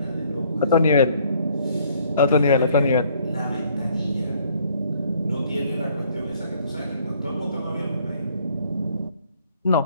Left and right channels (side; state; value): both; inverted; correlation -0.62